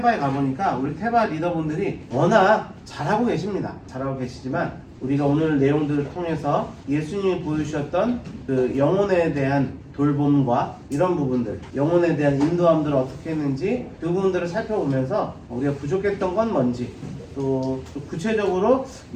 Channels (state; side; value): identical; both; correlation 1.00